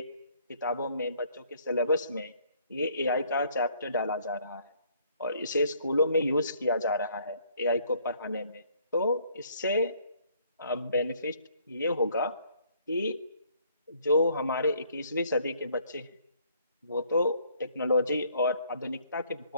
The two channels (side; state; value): both; inverted; correlation -0.63